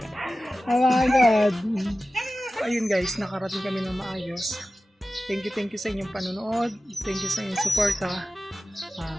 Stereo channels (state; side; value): normal; both; correlation 0.95